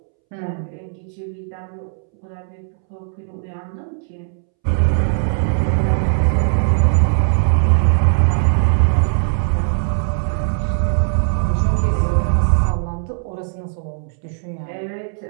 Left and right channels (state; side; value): silent; left; 67 dB below the other